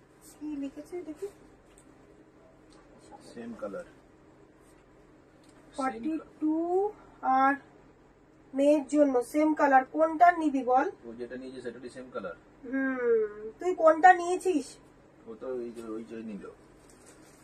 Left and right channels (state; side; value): identical; both; correlation 1.00